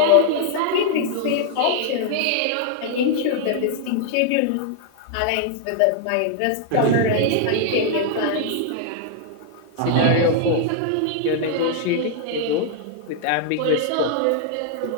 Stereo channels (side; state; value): both; different; correlation 0.00